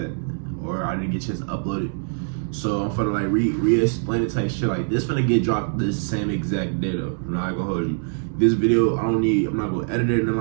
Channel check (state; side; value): silent; left; digital silence